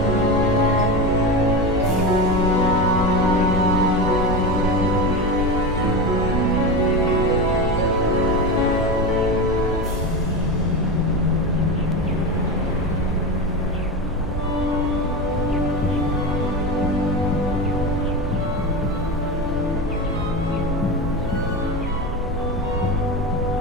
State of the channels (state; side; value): normal; both; correlation 0.21